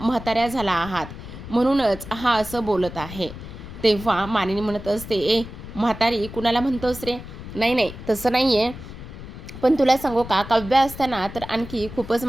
म्हाताऱ्या झाला आहात म्हणूनच हा असं बोलत आहे. तेव्हा मानिनी म्हणत असते, ए म्हातारी कुणाला म्हणतोस रे? नाही नाही तसं नाही आहे. पण तुला सांगू का, काव्या असताना तर आणखी खूपच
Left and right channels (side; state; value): left; noise; rumble, 12 dB below the sound